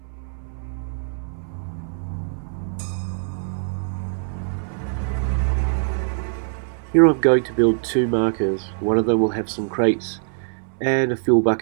Here I'm going to build two markers. One of them will have some crates and a fuel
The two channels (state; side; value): silent; left; 63 dB below the other